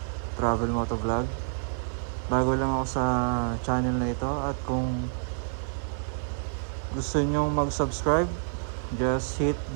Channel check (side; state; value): left; silent; 59 dB below the other